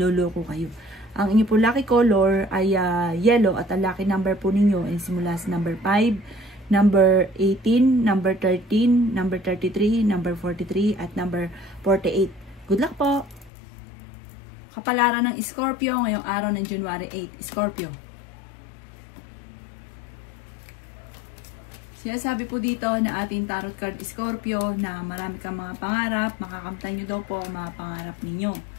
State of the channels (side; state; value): right; drops out; at 13.5 s